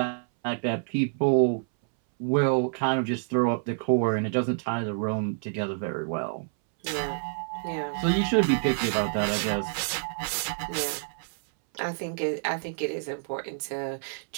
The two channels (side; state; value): left; silent; 59 dB below the other